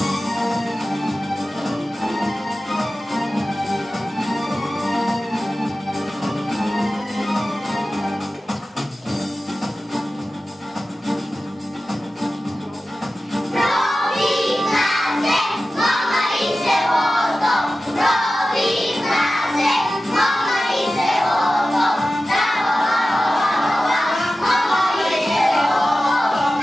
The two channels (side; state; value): both; normal; correlation 0.95